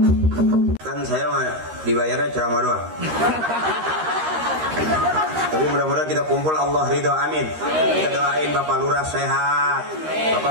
dibayarnya ceramah doang. Tapi mudah-mudahan kita kumpul Allah ridho, amin. Kita doain Bapak Lurah sehat,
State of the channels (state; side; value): late; left; 13 ms